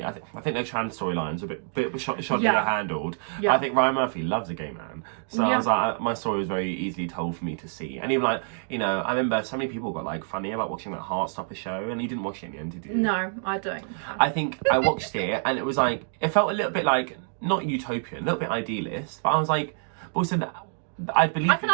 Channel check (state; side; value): silent; left; digital silence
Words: I think their trans storylines are a bit shoddily handled. Yeah. I think Ryan Murphy loves a gay man, so I was like, my story was very easily told for me to see. And even like, you know, I remember so many people got like funny about watching that Heartstopper show, and he didn't watch it in the end, did you? No, I don't. I think I watched it, and it was like, it felt a little bit like not utopian, a little bit idealist, but I was like, but also I can